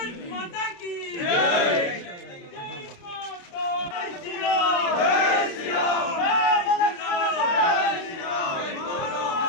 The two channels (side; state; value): right; late; 29 ms